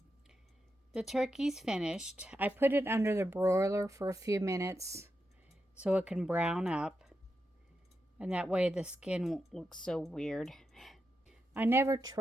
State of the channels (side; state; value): both; normal; correlation 0.87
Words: The turkey's finished. I put it under the broiler for a few minutes so it can brown up, and that way the skin won't look so weird. I never